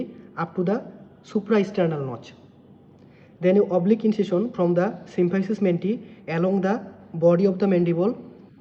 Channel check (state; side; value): identical; both; correlation 1.00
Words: up to the supraesternal notch. Then an oblique incision from the symphysis menti along the body of the mandible.